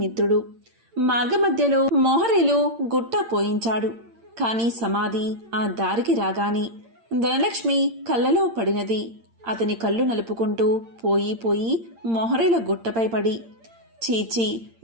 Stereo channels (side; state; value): left; late; 8.8 ms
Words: మార్గమధ్యలో మోహరీలు గుట్ట పోయించాడు. కాని సమాధి ఆ దారికి రాగానే ధనలక్ష్మి కళ్ళలో పడినది. అతని కళ్ళు నలుపుకుంటూ పోయి పోయి మోహరీల గుట్టపై పడి, చీచి,